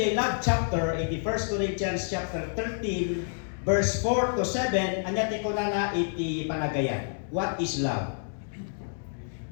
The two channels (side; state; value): right; silent; digital silence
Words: love chapter 1 Corinthians chapter 13 verse 4 to 7 anyati ko na iti panagayan. What is love?